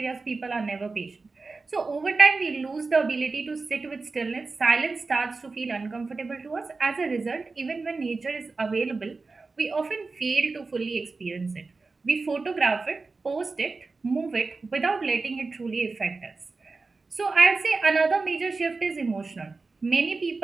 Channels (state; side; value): quieter; left; 4.0 dB